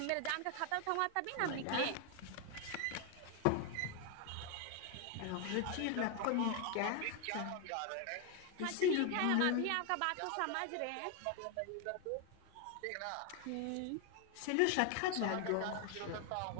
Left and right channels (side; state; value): both; different; correlation 0.01